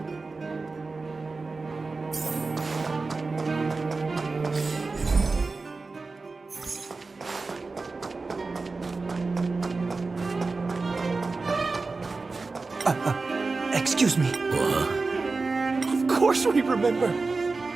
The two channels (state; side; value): quieter; left; 3.9 dB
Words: Excuse me. Of course we remember.